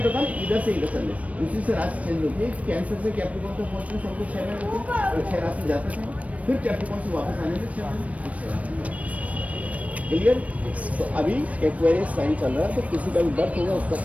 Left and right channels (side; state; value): left; late; 0.067 ms